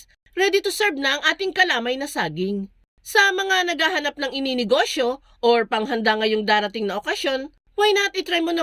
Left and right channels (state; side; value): identical; both; correlation 1.00